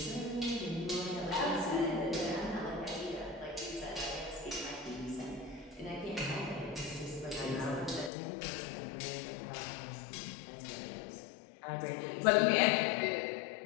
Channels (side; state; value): right; drops out; at 8.1 s